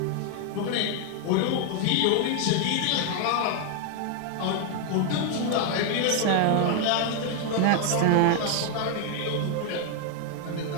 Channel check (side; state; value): both; different; correlation 0.00